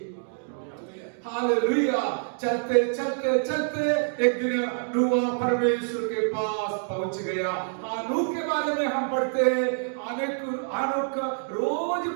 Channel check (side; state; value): left; silent; digital silence